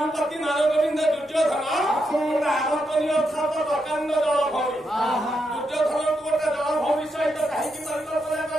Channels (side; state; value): both; normal; correlation 0.82